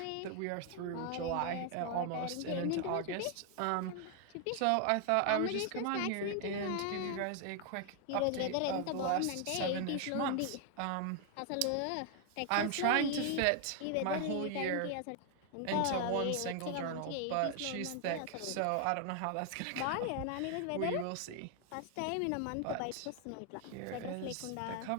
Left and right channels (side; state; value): both; different; correlation 0.00